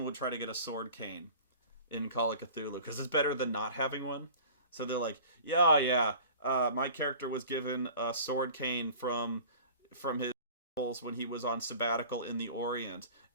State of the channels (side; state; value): both; inverted; correlation -0.43